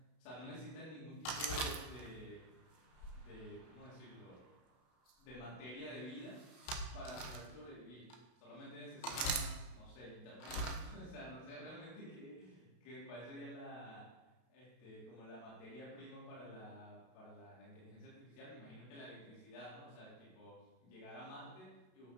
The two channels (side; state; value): right; late; 32 ms